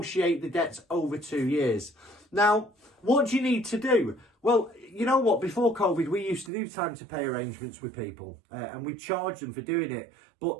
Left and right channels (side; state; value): left; drops out; at 6.5 s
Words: the debts over 2 years. Now, what do you need to do? Well, you know what? Before COVID, we used to do time to pay arrangements with people and we charged them for doing it.